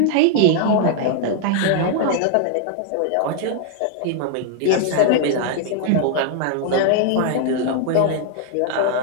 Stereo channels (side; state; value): both; different; correlation 0.00